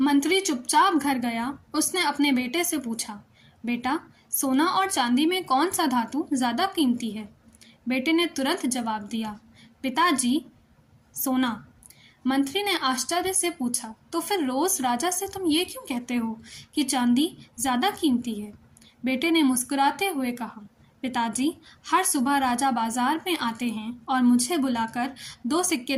चुपचाप घर गया। उसने अपने बेटे से पूछा, बेटा, सोना और चांदी में कौन सा धातु ज़्यादा कीमती है? बेटे ने तुरंत जवाब दिया, पिताजी, सोना। मंत्री ने आश्चर्य से पूछा, तो फिर रोज़ राजा से तुम ये क्यों कहते हो कि चांदी ज़्यादा कीमती है? बेटे ने मुस्कुराते हुए कहा, पिताजी, हर सुबह राजा बाजार में आते हैं और मुझे बुलाकर 2 सिक्के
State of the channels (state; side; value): identical; both; correlation 1.00